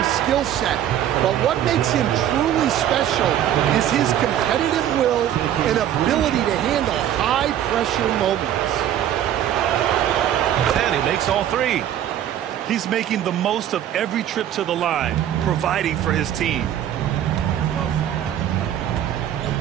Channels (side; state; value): left; quieter; 11.0 dB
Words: skill set, but what makes him truly special is his competitive will and ability to handle high-pressure moments. And he makes all three. He's making the most of every trip to the line, providing for his team.